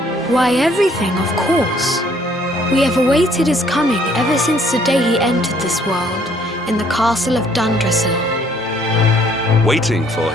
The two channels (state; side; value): normal; both; correlation 0.62